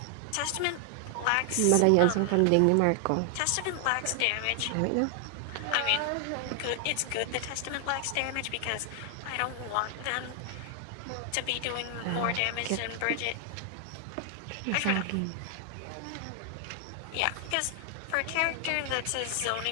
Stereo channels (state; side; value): different; both; correlation 0.00